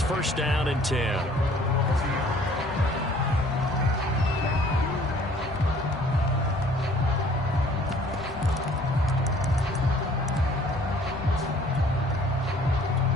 1st down and 10.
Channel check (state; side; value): normal; both; correlation 0.56